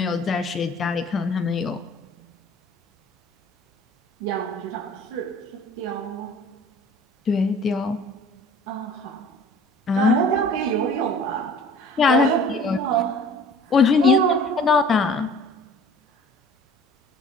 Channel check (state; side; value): normal; both; correlation 0.48